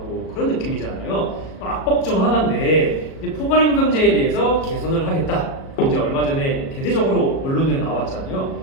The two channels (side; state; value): right; late; 37 ms